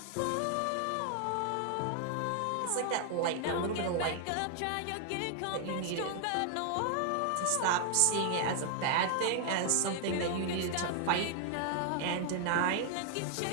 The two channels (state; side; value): different; both; correlation 0.00